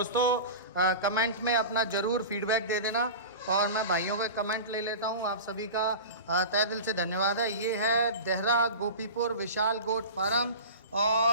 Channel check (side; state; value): both; inverted; correlation -0.32